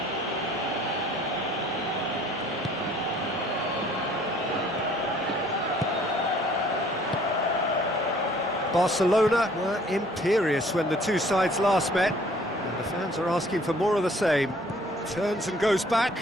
Barcelona were imperious when the two sides last met, and the fans are asking for more of the same. Turns and goes back.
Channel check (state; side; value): normal; both; correlation 0.57